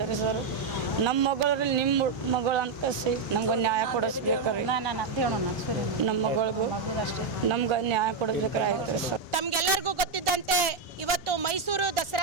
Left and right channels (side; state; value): left; quieter; 4.6 dB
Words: ರೀ ಸರ್. ನಮ್ಮ ಮಗಳು ನಿಮ್ಮ ಮಗಳು ಅಂತ ಕಸಿ ನಮ್ಗೆ ನ್ಯಾಯ ಕೊಡಿಸ್ಬೇಕ್ರಿ. ನಮ್ಮ ಮಗಳಿಗೂ ನಮ್ಗೆ ನ್ಯಾಯ ಕೊಡಿಸ್ಬೇಕ್ರಿ. ಆಯ್ತು ರೀ ಸರ್. ತಮ್ಗೆಲ್ಲರಿಗೂ ಗೊತ್ತಿದ್ದಂತೆ ಇವತ್ತು ಮೈಸೂರು